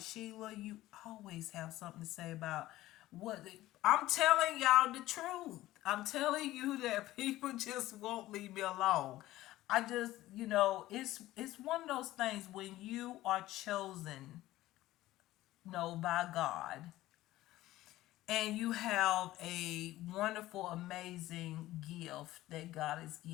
you always have something to say about what I'm telling y'all the truth. I'm telling you that people just won't leave me alone. I just, it's one of those things when you are chosen, by God, and you have a wonderful, amazing gift that God has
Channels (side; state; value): right; quieter; 16.0 dB